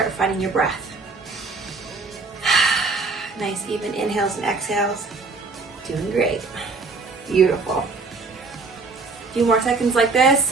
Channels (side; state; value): left; quieter; 4.0 dB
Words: finding your breath. Nice even inhales and exhales. Doing great. Beautiful. A few more seconds like this.